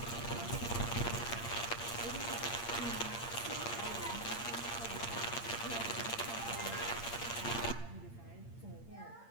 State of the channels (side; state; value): right; late; 8.6 ms